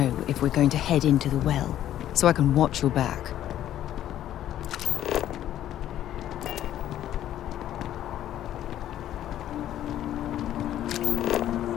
if we're going to head into the well, so I can watch your back.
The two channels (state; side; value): quieter; right; 12.0 dB